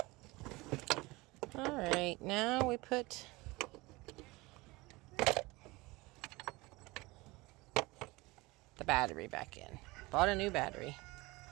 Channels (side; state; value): left; quieter; 22.3 dB